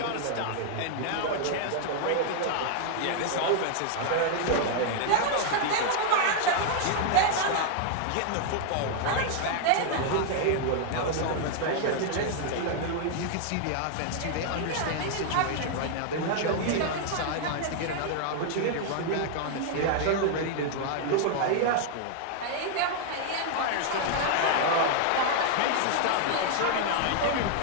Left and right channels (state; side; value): different; both; correlation 0.00